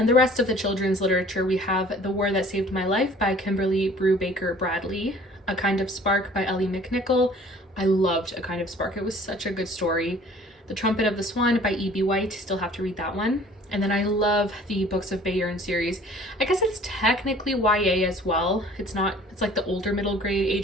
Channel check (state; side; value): normal; both; correlation 0.51